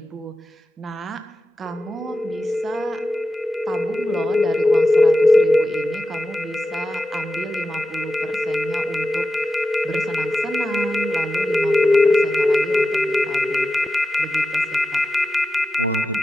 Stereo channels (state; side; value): normal; both; correlation 0.92